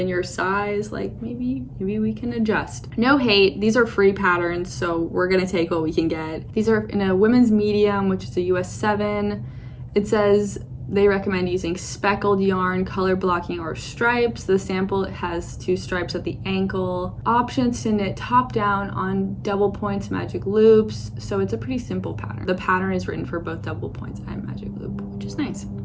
your size, like maybe we can adjust. No hate, these are free patterns, so we're gonna take what we can get. These are in a women's medium, which is a US 7. It says they recommend using speckled yarn, color blocking, or stripes. The sample has 2 stripes at the ankle. Options to knit top down on double points magic loops. So it's a pretty simple pattern. The pattern is written for both double points and magic loop, which is nice.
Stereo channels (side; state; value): both; identical; correlation 1.00